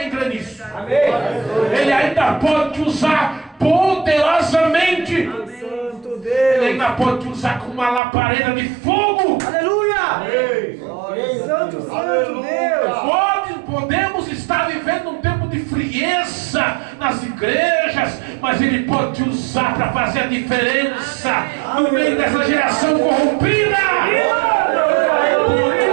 crê nisso? Ele ainda pode te usar poderosamente. Ele ainda pode te usar como uma labareda de fogo. Aleluia! Santo, santo Deus! Podemos estar vivendo um tempo de frieza nas igrejas, mas Ele pode te usar para fazer a diferença no meio dessa geração corrompida. Por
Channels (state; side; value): drops out; left; at 8.0 s